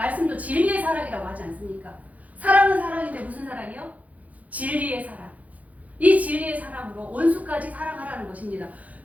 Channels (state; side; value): late; left; 0.073 ms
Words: 진리의 사랑이라고 하지 않습니까? 사랑은 사랑인데 무슨 사랑이요? 진리의 사랑. 이 진리의 사랑으로 원수까지 사랑하라는 것입니다.